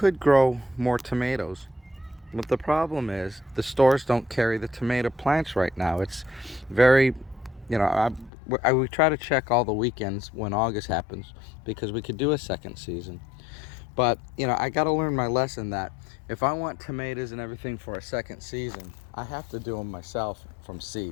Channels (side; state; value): right; drops out; at 8.3 s